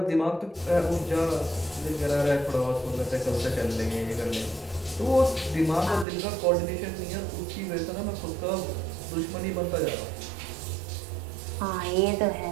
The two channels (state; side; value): drops out; left; at 6.1 s